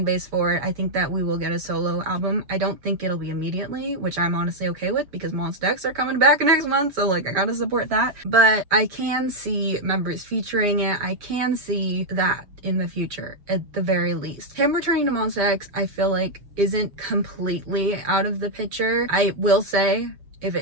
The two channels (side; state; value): left; late; 6.7 ms